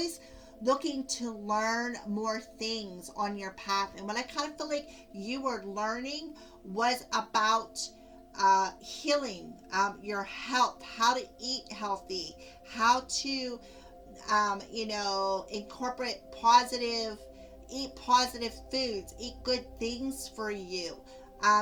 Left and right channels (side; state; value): both; identical; correlation 1.00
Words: looking to learn more things on your path. And what I kind of feel like you were learning was about healing, your health, how to eat healthy, how to incorporate eat positive foods, eat good things for you,